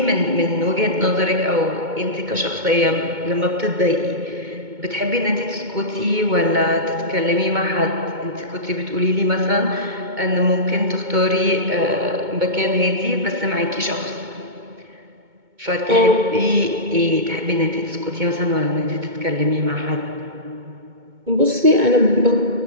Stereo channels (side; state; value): left; late; 2.2 ms